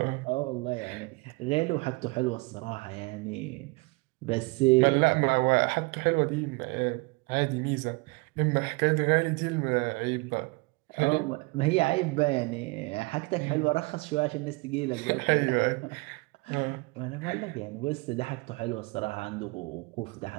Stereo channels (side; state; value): left; quieter; 26.5 dB